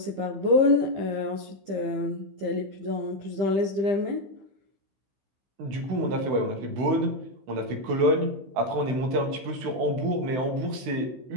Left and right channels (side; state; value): left; late; 16 ms